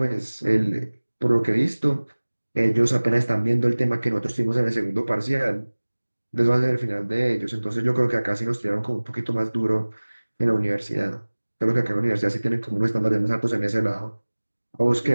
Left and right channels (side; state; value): both; inverted; correlation -1.00